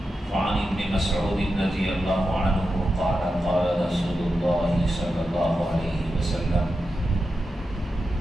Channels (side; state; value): both; normal; correlation 0.89